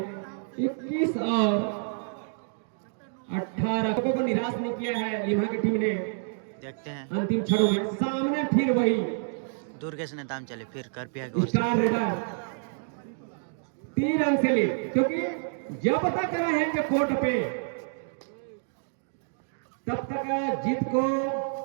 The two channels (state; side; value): silent; left; digital silence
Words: 21 और 18 को निराश नहीं किया है लिमा की टीम ने। देखते हैं अंतिम क्षणों में सामने फिर वही दुर्गेश नेताम चले, फिर कर पिया की ओर से स्टार रेडर 3 रन से लीड। क्योंकि जब तक रहेंगे कोर्ट पे तब तक जीत को